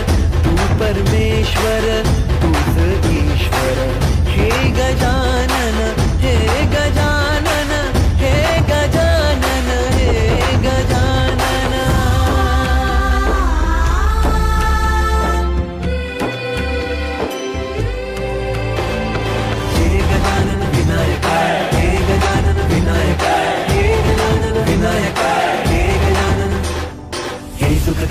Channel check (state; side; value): identical; both; correlation 1.00